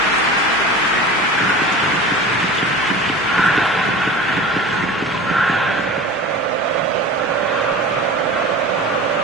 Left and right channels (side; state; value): both; normal; correlation 0.35